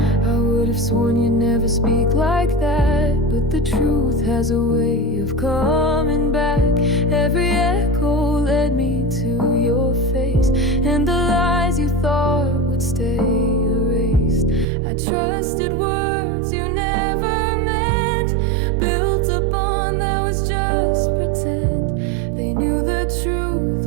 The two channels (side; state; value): left; drops out; at 14.7 s